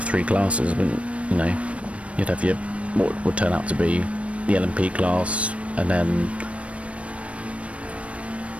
3 classes, but you know, you'd have your what would turn out to be the LMP class, and then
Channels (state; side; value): late; left; 0.063 ms